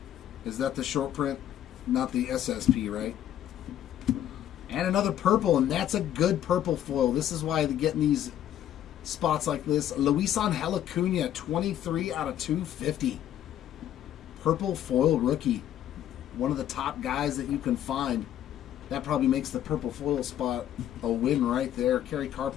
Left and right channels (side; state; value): right; quieter; 11.2 dB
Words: Is that the short print? Not the SSP, right? And another purple, and that's a good purple foil. This is why they're getting these spots like this. Luisan Acuna, 23 out of 250. Purple foil rookie. One of the top guys that you can find. That probably makes the purple foil spot a win right there. Kerry